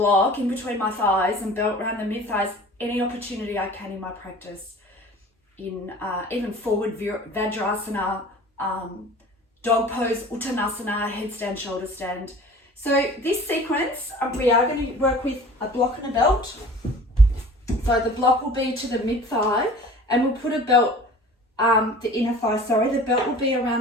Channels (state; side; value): normal; both; correlation 0.44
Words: in between my thighs and belt around the mid thighs any opportunity I can in my practice. In even forward Vajrasana, dog pose, Uttanasana, headstand, shoulder stand. So this sequence, we are going to work with a block and a belt. So the block will be to the mid thigh, and we'll put a belt, the inner thigh, the belt will be